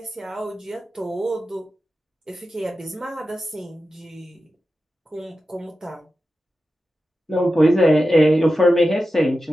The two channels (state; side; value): normal; both; correlation 0.92